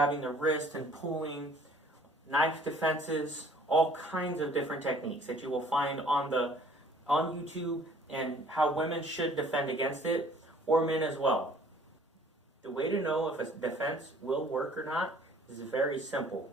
their wrist and pulling, knife defenses, all kinds of different techniques that you will find on YouTube and how women should defend against it, or men as well. The way to know if a defense will work or not is very simple.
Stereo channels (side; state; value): both; normal; correlation 0.55